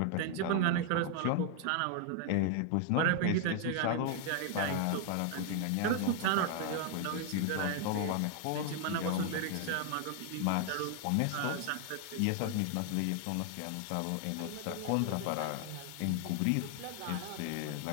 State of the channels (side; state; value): both; different; correlation 0.00